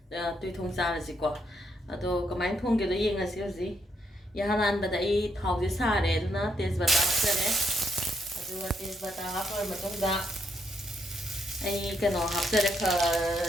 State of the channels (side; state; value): both; normal; correlation 0.76